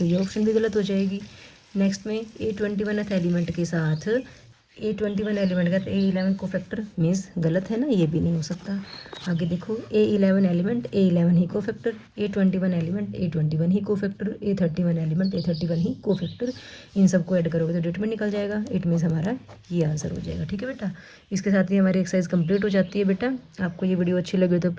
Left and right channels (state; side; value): identical; both; correlation 1.00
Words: ये ऑप्शन भी गलत हो जाएगी। नेक्स्ट में A21 एलिमेंट के साथ A21 एलिमेंट का A11 कोफैक्टर, मीन्स गलत है ना, ये भी नहीं हो सकता। आगे देखो A11 एलिमेंट A11 ही कोफैक्टर, A21 एलिमेंट A21 ही कोफैक्टर, A31 एलिमेंट A31 ही कोफैक्टर, इन सबको ऐड करोगे तो डिटरमिनेंट निकल जाएगा। इट मीन्स हमारा ये आंसर हो जाएगा। ठीक है बेटा, इसके साथ ही हमारी एक्सरसाइज कंप्लीट हो जाती है। बेटा आपको ये वीडियो अच्छी लगी तो